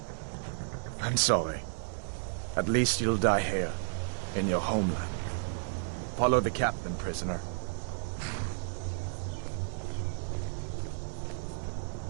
I'm sorry. At least you'll die here, in your homeland. Follow the captain, prisoner.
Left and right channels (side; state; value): left; silent; digital silence